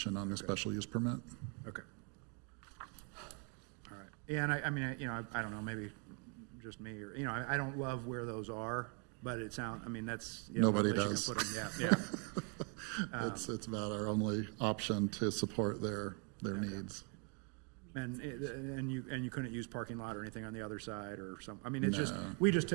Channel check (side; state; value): left; quieter; 36.1 dB